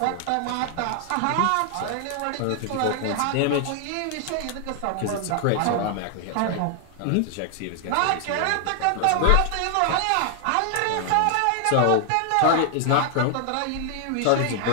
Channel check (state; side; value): different; both; correlation 0.00